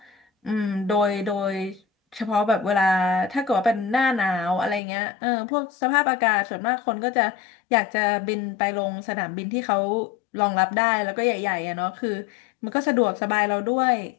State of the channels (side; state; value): right; drops out; at 4.8 s